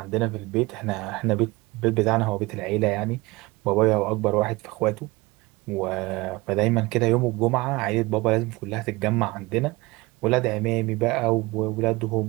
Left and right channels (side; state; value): left; quieter; 22.4 dB